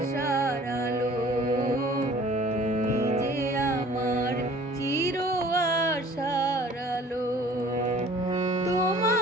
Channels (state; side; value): normal; both; correlation 0.50